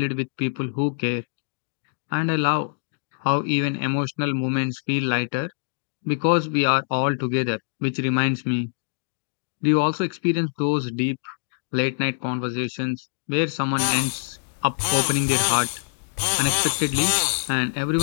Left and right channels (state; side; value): silent; right; digital silence